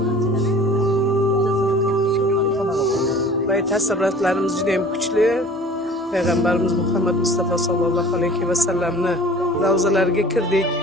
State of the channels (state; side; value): normal; both; correlation 0.45